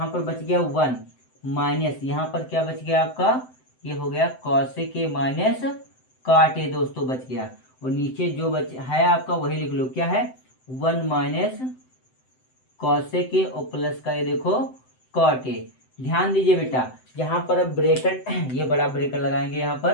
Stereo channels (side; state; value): right; late; 7.8 ms